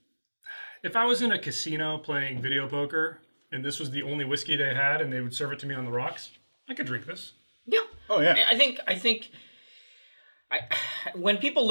If I was in a casino playing video poker and this was the only whiskey they had and they would serve it to me on the rocks, I could drink this. Yeah. Oh yeah. I think when people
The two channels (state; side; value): inverted; both; correlation -1.00